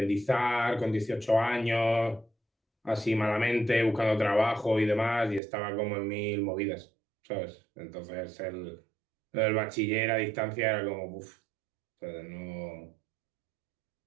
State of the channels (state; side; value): drops out; left; at 5.4 s